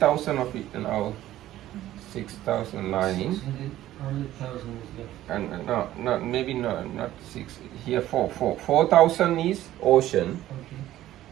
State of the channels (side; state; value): left; quieter; 14.0 dB